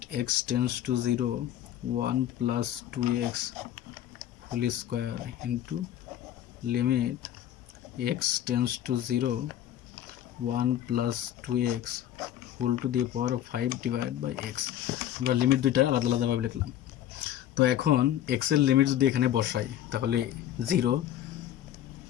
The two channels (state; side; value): quieter; right; 11.6 dB